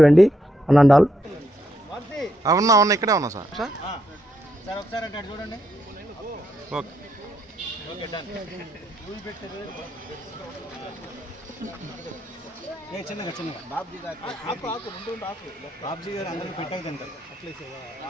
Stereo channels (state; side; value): normal; both; correlation 0.79